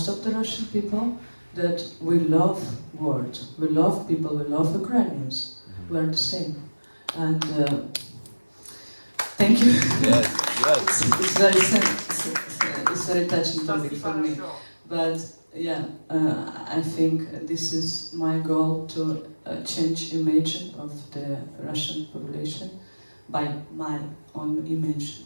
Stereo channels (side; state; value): both; inverted; correlation -1.00